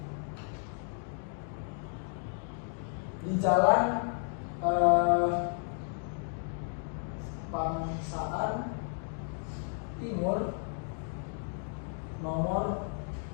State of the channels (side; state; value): right; silent; 56 dB below the other